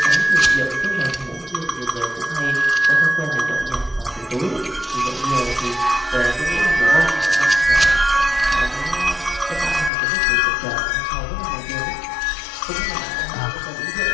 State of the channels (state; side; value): drops out; right; at 9.9 s